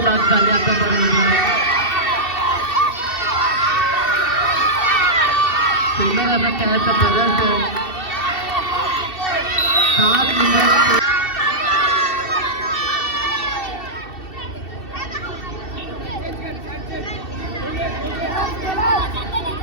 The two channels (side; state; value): right; late; 2.7 ms